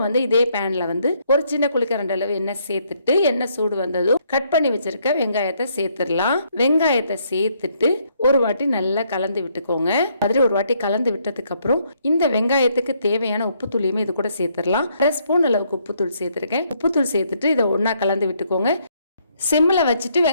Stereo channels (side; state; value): both; inverted; correlation -0.70